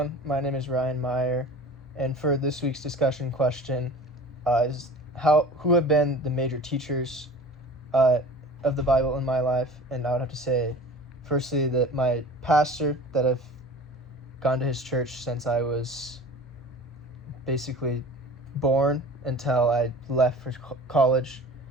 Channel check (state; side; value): normal; both; correlation 0.41